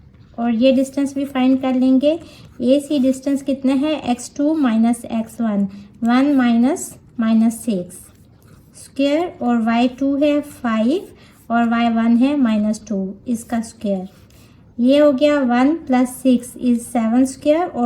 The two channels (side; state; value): both; identical; correlation 1.00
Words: और ये डिस्टेंस भी फाइंड कर लेंगे। ए सी डिस्टेंस कितना है x2 - x1, 1 - -6 स्क्वायर, और y2 है 5 और y1 है -2 इसका स्क्वायर। ये हो गया 1 + 6 इज 7 स्क्वायर